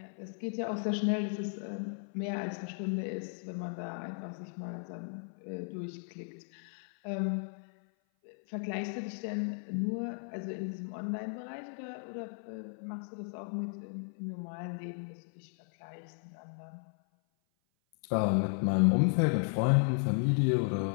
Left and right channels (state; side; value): silent; right; 54 dB below the other